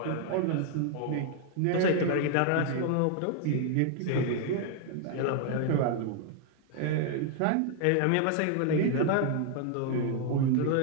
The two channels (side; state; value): both; different; correlation 0.00